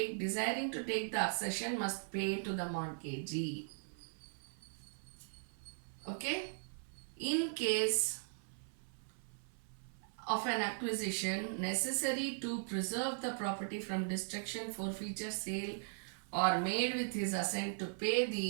the accession must pay to the mortgagee. Okay? In case of an acquisition necessary to preserve the property from destruction, forfeiture, sale, or made with his assent, to pay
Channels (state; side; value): silent; left; 52 dB below the other